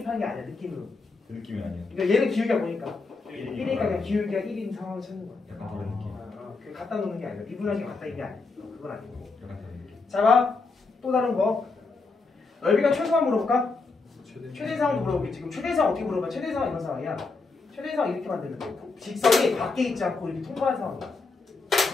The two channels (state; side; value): quieter; right; 4.0 dB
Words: 게 아니야. 느낌으로. 그 느낌이 아니에요. 그러니까 얘는 기울기가 보니까 1이니까 1이니까 그냥 기울기가 1인 상황을 찾는 거야. 약간 그런 느낌. 그 갖다 놓는 게 아니라 미분하기 갖다 이게 아니야. 그건 아니고. 약간 그런 느낌. 자, 봐. 또 다른 거. 넓이가 최소한 물어볼까? 최대상도 물어보겠지. 지금 최대상 어떻게 물어봐? 최대상 이런 상황이야. 최대상 이렇게 만들면 돼. 직선이 밖에 있지 않고 이렇게 통과한 상황이야.